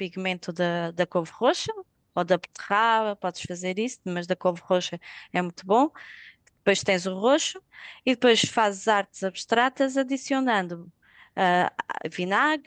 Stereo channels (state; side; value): identical; both; correlation 1.00